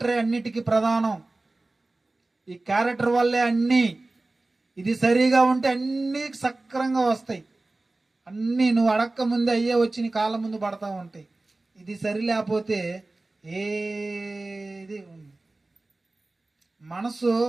అన్నిటికీ ప్రధానం. ఈ క్యారెక్టర్ వల్లే అన్నీ. ఇది సరిగా ఉంటే అన్నీ సక్రంగా వస్తాయి. అన్నీ నువ్వు అడక్క ముందే అయ్యే వచ్చి నీ కాళ్ళ ముందు పడతా ఉంటాయి. ఇది సరి లేకపోతే ఏది ఉంది. మనసు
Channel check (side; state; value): left; quieter; 3.0 dB